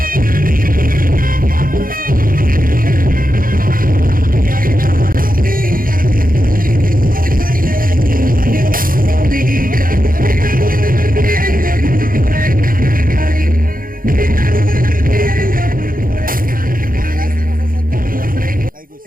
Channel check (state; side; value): late; left; 0.41 ms